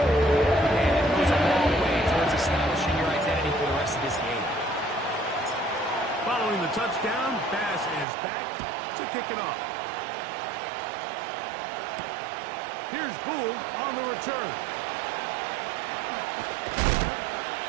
it goes a long way towards establishing your identity for the rest of this game. Following the touchdown, Bass is back to kick it off. Here's Gould on the return.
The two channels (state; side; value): drops out; left; at 8.1 s